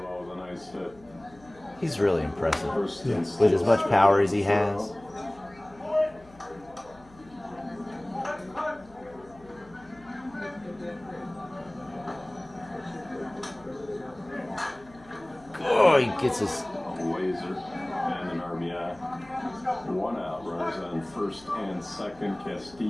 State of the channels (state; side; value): noise; left; hum, 24 dB below the sound